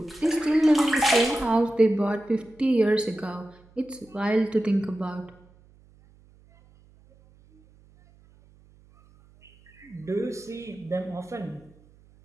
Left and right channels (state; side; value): noise; right; hum, 28 dB below the sound